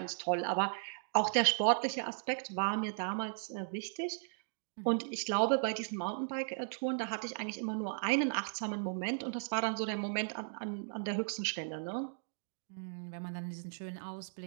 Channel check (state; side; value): silent; left; digital silence